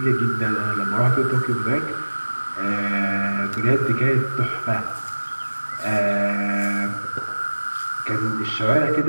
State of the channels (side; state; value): both; inverted; correlation -1.00